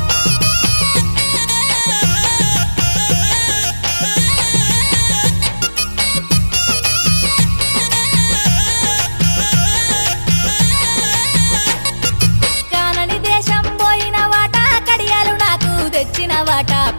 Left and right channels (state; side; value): inverted; both; correlation -1.00